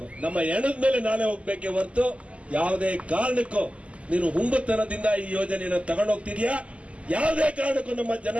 ನಮ್ಮ ಎಣದ ಮೇಲೆ ನಾನೇ ಹೋಗ್ಬೇಕೆ ಹೊರತು ಯಾವುದೇ ಕಾರಣಕ್ಕೂ ನೀನು ಹುಂಬತನದಿಂದ ಈ ಯೋಜನೆಯನ್ನು ತಗೊಂಡೋಗ್ತಿದ್ಯಾ. ಯಾವುದೇ ಕಾರಣಕ್ಕೂ ನಮ್ಮ ಜನ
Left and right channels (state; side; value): late; left; 0.061 ms